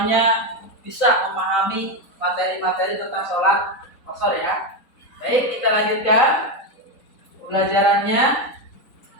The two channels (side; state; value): right; late; 3.9 ms